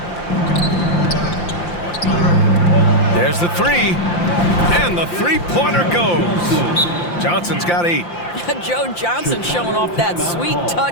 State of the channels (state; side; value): late; right; 5.8 ms